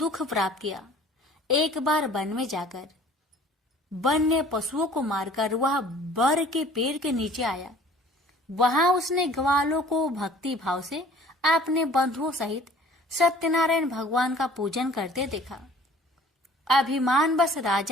प्राप्त किया। एक बार वन में जाकर वन्य पशुओं को मारकर वह बर के पेड़ के नीचे आया। वहां उसने ग्वालों को भक्ति भाव से अपने बंधुओं सहित सत्यनारायण भगवान का पूजन करते देखा। अभिमानवश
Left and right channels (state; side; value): normal; both; correlation 0.50